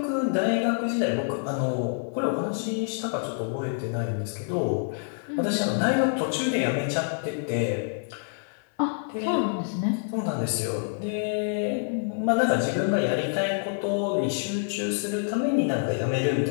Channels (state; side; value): silent; right; 60 dB below the other